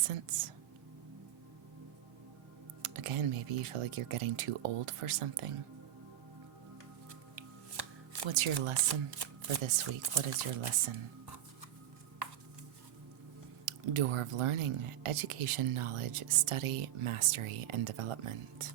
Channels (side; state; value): left; quieter; 11.9 dB